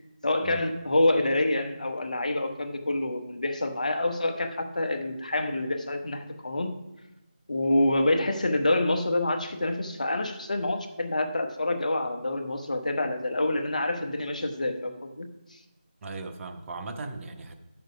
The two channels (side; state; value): both; inverted; correlation -0.88